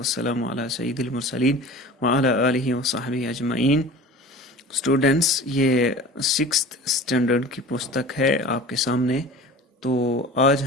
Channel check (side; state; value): both; normal; correlation 0.39